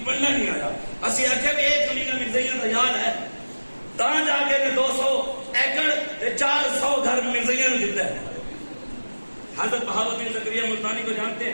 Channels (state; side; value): inverted; both; correlation -1.00